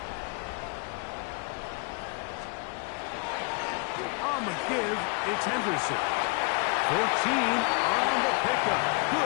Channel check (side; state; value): right; quieter; 33.0 dB